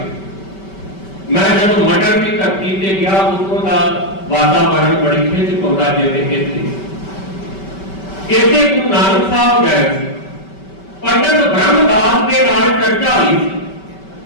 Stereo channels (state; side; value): late; right; 5.2 ms